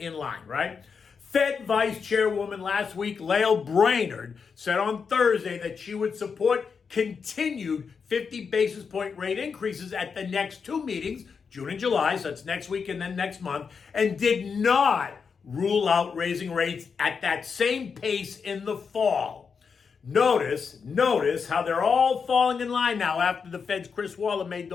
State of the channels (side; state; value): right; quieter; 5.8 dB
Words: line, right? Fed Vice Chairwoman last week, Lael Brainard, said on Thursday that she would support continued 50 basis point rate increases at the next two meetings, June and July, so that's next week and then next month, and did not rule out raising rates at that same pace in the fall. Notice how they're all falling in line now after the Fed's Chris Waller made